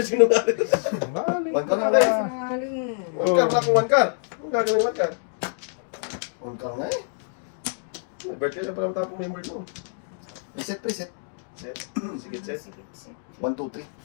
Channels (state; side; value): silent; right; digital silence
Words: nga rin. One ka lang, talaga. pre. Sinungaling. One car na kung one car. Ang gagawin one car. One ka nga eh. May birthday na parang tapong member mo. Preset, preset. Set. Sige, set. Sikit, sikit. 1, 2, 3.